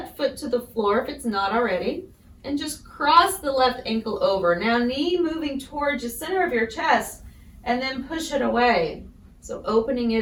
foot to the floor if it's not already. And just cross the left ankle over. Now knee moving towards the center of your chest, and then push it away. So opening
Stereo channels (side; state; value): both; identical; correlation 1.00